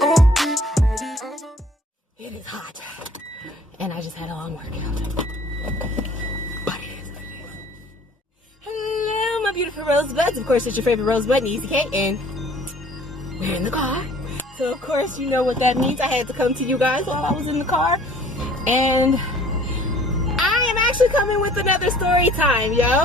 It is hot, and I just had a long workout. But it is what it is. Hello, my beautiful rosebuds. Of course, it's your favorite rosebud, Easy K, and we're in the car. So, of course, you know what that means. I had to come to you guys while I was in the car, and I am actually coming with another story time,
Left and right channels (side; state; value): both; normal; correlation 0.53